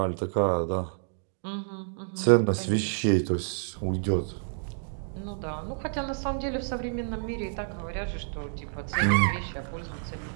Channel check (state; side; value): silent; left; digital silence